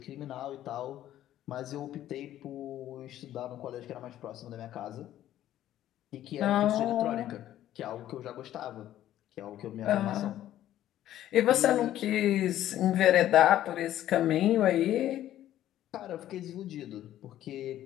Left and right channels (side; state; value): right; quieter; 12.7 dB